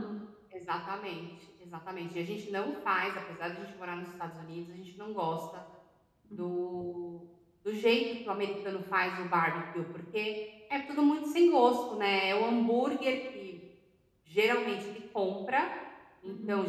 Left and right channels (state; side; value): identical; both; correlation 1.00